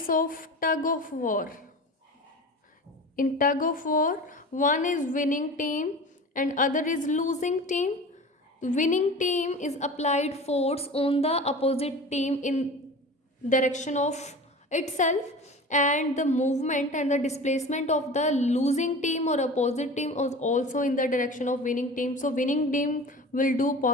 of tug of war. In tug of war, one is winning team and other is losing team. The winning team is applied force on the opposite team in direction of itself, and the movement and the displacement of the losing team or opposite team is also in the direction of winning team. So winning team will do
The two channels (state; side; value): normal; both; correlation 0.35